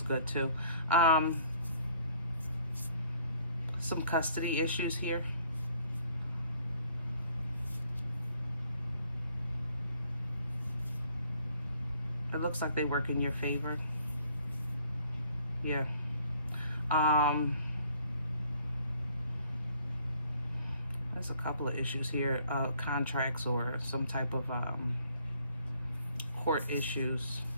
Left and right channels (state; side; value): inverted; both; correlation -0.61